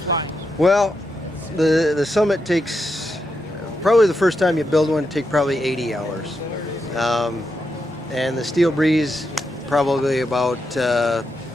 Well, the Summit takes. Probably the first time you build one, it takes probably 80 hours. And the Steel Breeze, probably about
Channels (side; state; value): both; normal; correlation 0.85